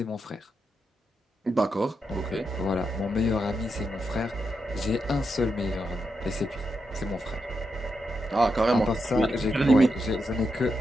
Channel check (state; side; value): normal; both; correlation 0.84